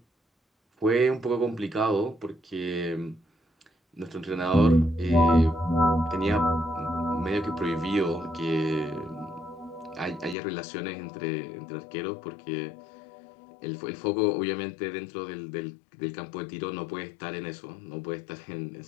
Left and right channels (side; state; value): right; drops out; at 10.4 s